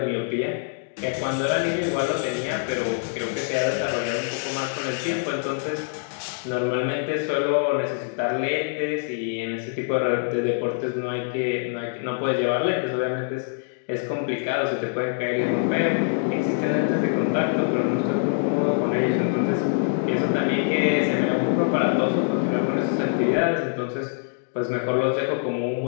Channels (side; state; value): right; silent; digital silence